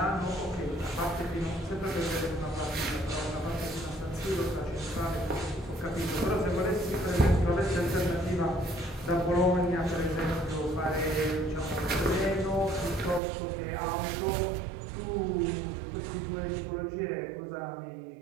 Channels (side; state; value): left; drops out; at 13.2 s